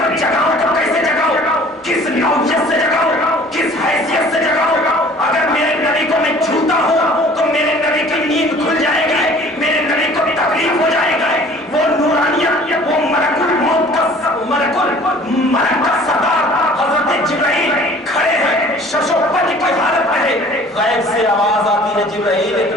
جگاؤں تو کیسے جگاؤں، کس نوعیت سے جگاؤں، کس حیثیت سے جگاؤں. اگر میرے نبی کو میں چھوتا ہوں تو میرے نبی کی نیند کھل جائے گی، میرے نبی کو تکلیف ہو جائے گی. وہ نورانیت، وہ ملک الموت کا ملک کا سردار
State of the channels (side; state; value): both; normal; correlation 0.50